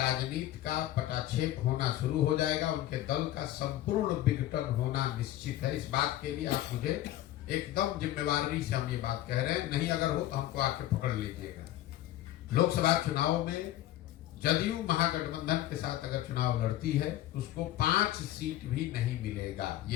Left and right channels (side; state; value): right; quieter; 14.0 dB